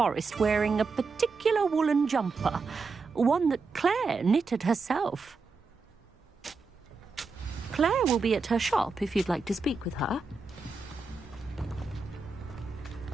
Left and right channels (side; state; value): left; quieter; 4.3 dB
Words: wearing a particular woolen jumper, one that Claire knitted herself. Claire will be at her shop if you'd like to speak with her.